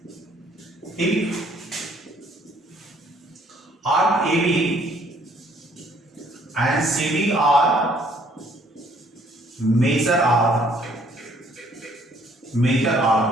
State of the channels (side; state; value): both; normal; correlation 0.62